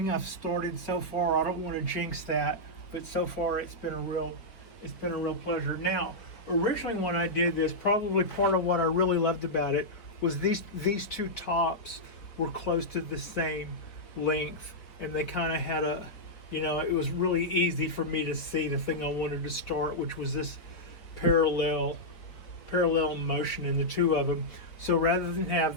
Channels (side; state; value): right; late; 4.6 ms